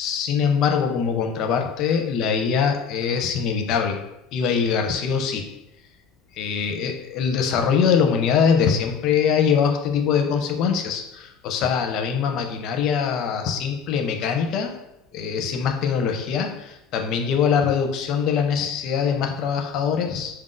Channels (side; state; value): right; quieter; 6.5 dB